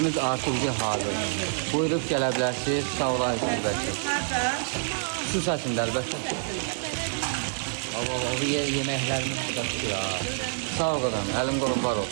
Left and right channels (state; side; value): silent; left; digital silence